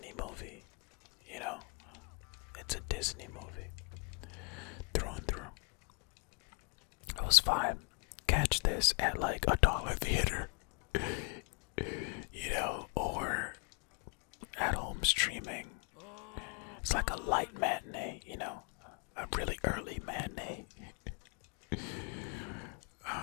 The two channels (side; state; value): right; quieter; 35.5 dB